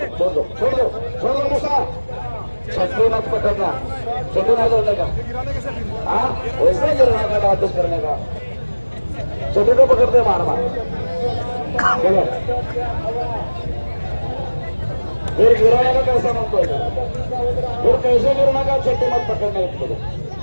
छोड़ दो मुसा छत्री मत पकड़ना. छत्री नहीं जोड़ने का. हाँ वैसे ही गिरने का वापस करने का. छत्री को पकड़ते मार मार. चलो फिर गिराने का कैसा म्हणतोय फिर कैसे गिरना का छठी मत पकडणे.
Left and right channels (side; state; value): both; inverted; correlation -1.00